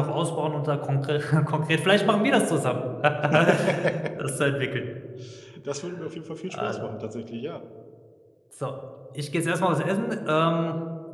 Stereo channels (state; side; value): identical; both; correlation 1.00